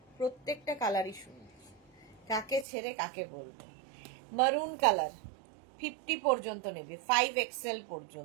প্রত্যেকটা কালারই সুন্দর, কাকে ছেড়ে কাকে বলবো। মারুন কালার 50 পর্যন্ত নেবে, 5XL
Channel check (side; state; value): left; drops out; at 2.7 s